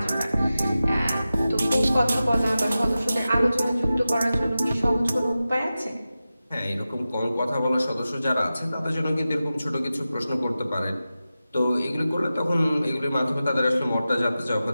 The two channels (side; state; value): both; inverted; correlation -0.94